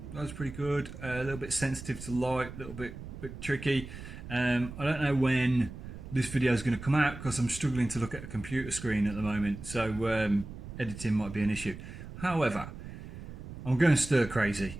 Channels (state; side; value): noise; right; rumble, 12 dB below the sound